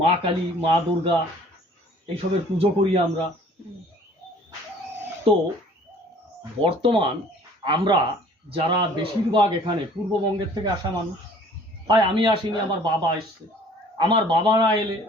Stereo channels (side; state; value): both; normal; correlation 0.53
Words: মা কালী মা দুর্গা এইসবের পুজো করি আমরা। তো বর্তমান আমরা যারা বেশিরভাগ এখানে পূর্ববঙ্গের থেকে আসা মানুষ, তাই আমি আসিনি, আমার বাবা এসছে, আমার বাবা না এলে